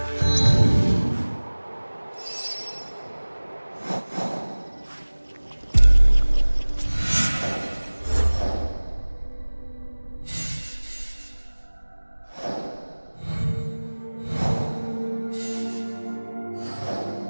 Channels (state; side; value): inverted; both; correlation -1.00